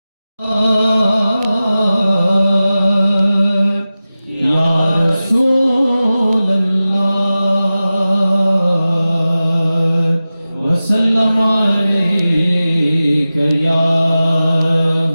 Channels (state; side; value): inverted; both; correlation -0.95